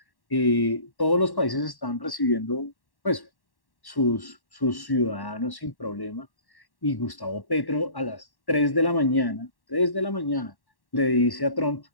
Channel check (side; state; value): right; late; 1.1 ms